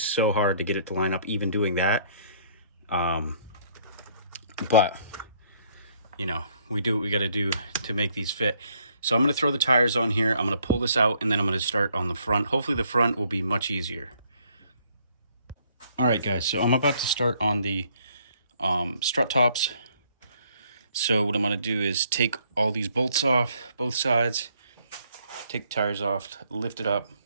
so hard to get it to line up even doing that. But, you know, we do what we got to do to make these fit. So I'm going to throw the tires on here. I'm going to pull this out, and then I'm going to start on the front. Hopefully the front will be much easier. All right, guys, so I'm about to start on the strut tops. So what I'm going to do is take all these bolts off, both sides, take the tires off, lift it up.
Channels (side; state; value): both; inverted; correlation -0.65